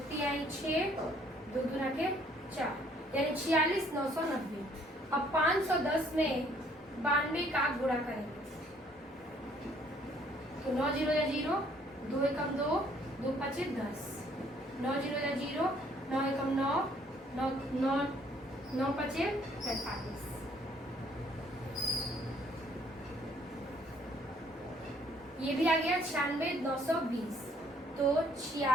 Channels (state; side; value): normal; both; correlation 0.63